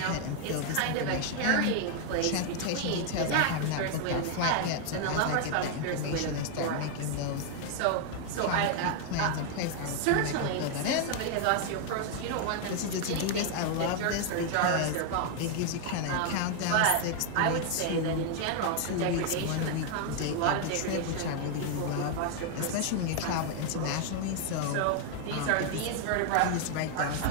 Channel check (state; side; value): different; both; correlation 0.00